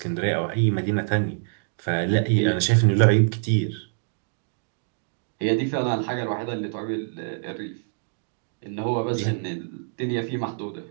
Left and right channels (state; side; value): silent; left; digital silence